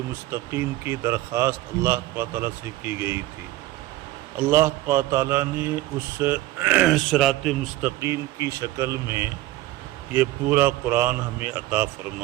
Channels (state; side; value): quieter; left; 16.8 dB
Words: مستقیم کی درخواست اللہ تعالیٰ سے کی گئی تھی، اللہ تعالیٰ نے اس صراط مستقیم کی شکل میں یہ پورا قرآن ہمیں عطا